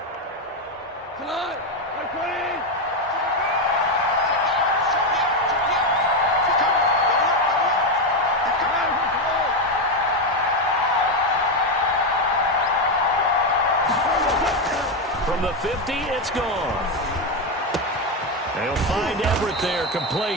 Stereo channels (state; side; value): normal; both; correlation 0.08